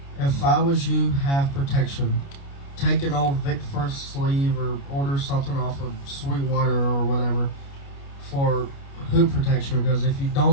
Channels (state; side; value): late; right; 29 ms